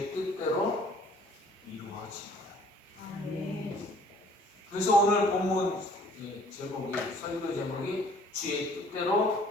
뜻대로 이루어지리라. 아멘. 그래서 오늘 본문 제목이 설교 제목이 주의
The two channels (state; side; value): normal; both; correlation 0.56